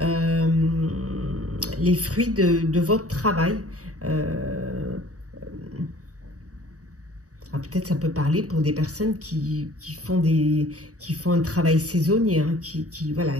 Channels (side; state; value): left; late; 0.66 ms